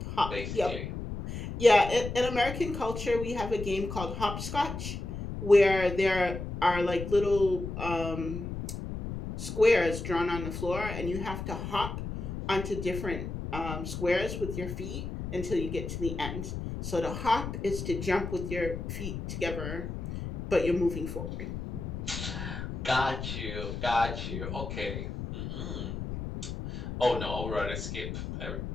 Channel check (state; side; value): noise; left; rumble, 6 dB below the sound